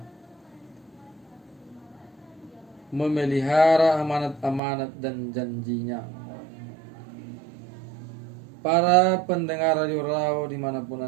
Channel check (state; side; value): drops out; left; at 4.6 s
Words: memelihara amanat-amanat dan janjinya. Para pendengar Radio Raw dimanapun